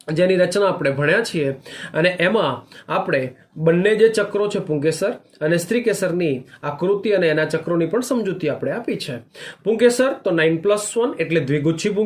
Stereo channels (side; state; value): both; identical; correlation 1.00